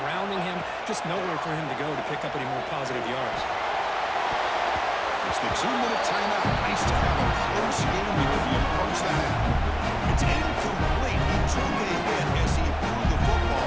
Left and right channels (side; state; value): both; identical; correlation 1.00